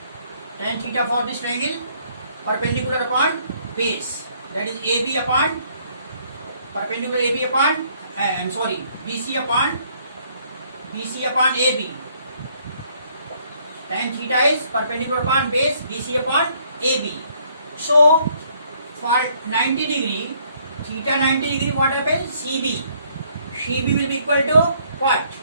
for this triangle perpendicular upon base, that is AB upon perpendicular AB upon BC upon AB. Tan theta is perpendicular upon base, BC upon AB. So for 90 degree, theta 90 degree, what happens? CB will be equal to what?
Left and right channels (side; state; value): both; inverted; correlation -0.65